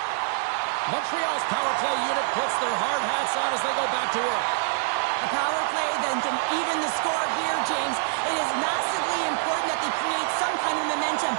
Montreal's power play unit puts their hard hats on as they go back to work. A power play then can even the score here, James. It is massively important that they create some kind of momentum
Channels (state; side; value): silent; left; digital silence